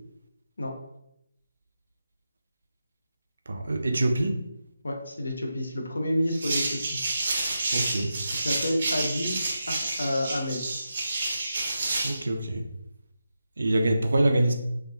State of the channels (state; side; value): inverted; both; correlation -0.89